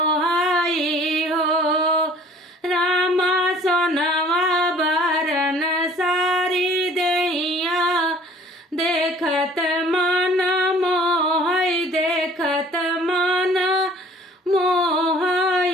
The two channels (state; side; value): normal; both; correlation 0.52